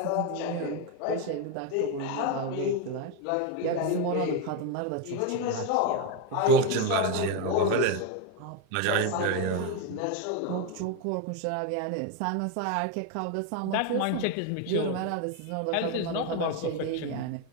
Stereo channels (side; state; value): both; different; correlation 0.02